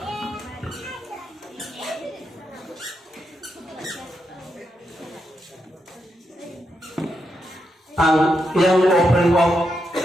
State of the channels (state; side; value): normal; both; correlation 0.83